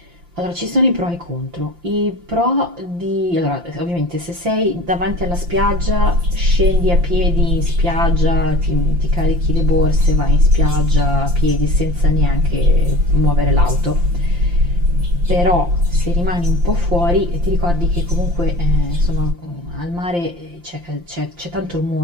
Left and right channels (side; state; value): left; late; 5.8 ms